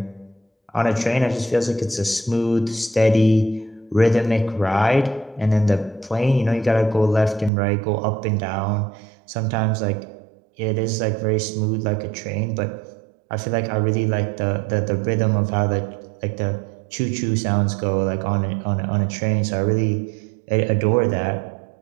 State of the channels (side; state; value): left; drops out; at 7.5 s